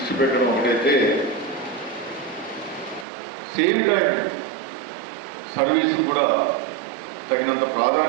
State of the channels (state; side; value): drops out; left; at 3.1 s